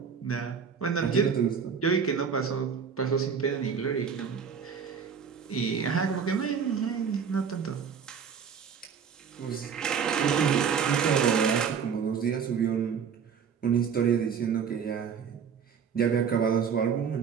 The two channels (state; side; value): quieter; left; 6.8 dB